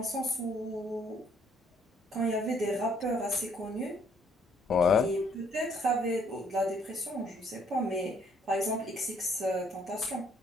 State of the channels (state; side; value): normal; both; correlation 0.65